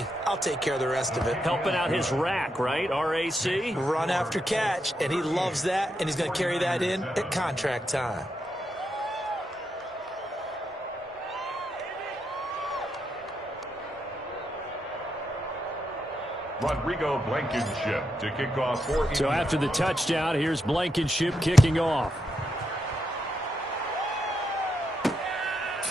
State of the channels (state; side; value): normal; both; correlation 0.83